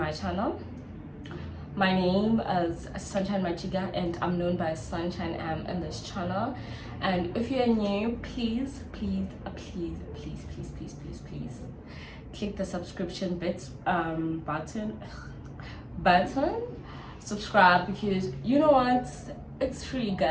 channel. My name is Sunshine Machiga and I'm known by Sunshine M in this channel. And if you're new, please click the subscription button, subscribe, because you know what, it's free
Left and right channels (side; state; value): both; identical; correlation 1.00